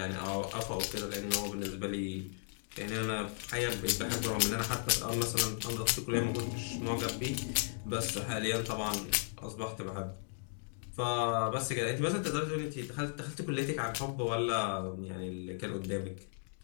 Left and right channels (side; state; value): right; silent; digital silence